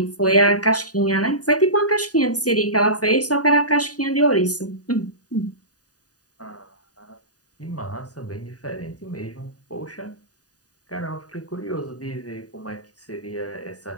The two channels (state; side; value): late; right; 0.68 ms